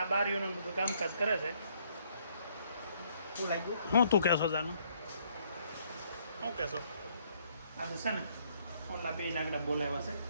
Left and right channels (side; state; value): both; inverted; correlation -0.67